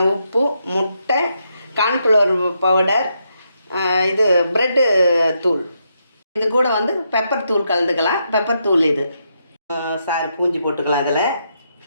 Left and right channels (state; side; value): inverted; both; correlation -0.80